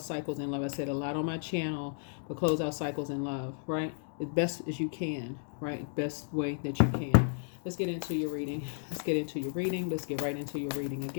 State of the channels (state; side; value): silent; right; digital silence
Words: cycles in love. I said a lot on my channel, but close out cycles in love, right? As best as you can, right? Best way that you can. Let's get into your reading. Let's get into your reading. Let's get right into your reading